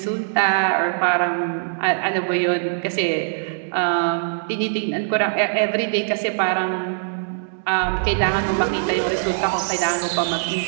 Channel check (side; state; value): left; silent; digital silence